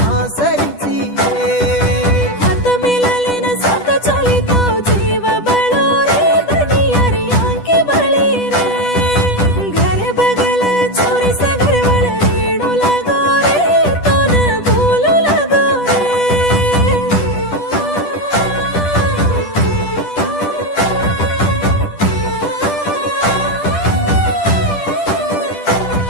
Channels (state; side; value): late; right; 10 ms